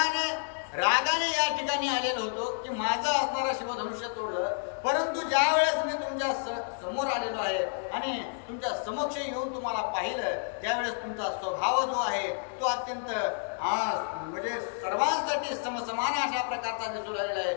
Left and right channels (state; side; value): silent; right; digital silence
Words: रागाने या ठिकाणी आलेलो होतो की माझं असणारं शिवधनुष्य तोडलं. परंतु ज्या वेळेस मी तुमच्या समोर आलेलो आहे आणि तुमच्या समक्ष येऊन तुम्हाला पाहिलं त्यावेळेस तुमचा स्वभाव जो आहे तो अत्यंत म्हणजे सर्वांसाठी समसमान अशा प्रकारचा दिसू लागलेला आहे.